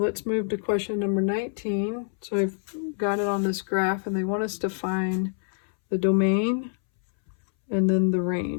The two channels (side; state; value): right; silent; 61 dB below the other